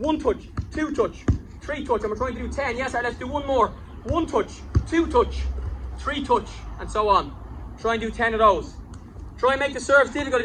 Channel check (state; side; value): identical; both; correlation 1.00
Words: touch, 2 touch, 3 touch. And we're trying to do 10. Yes, Art. Let's do 1 more. 1 touch, 2 touch, 3 touch, and so on. Try and do 10 of those. Try and make the serves difficult. If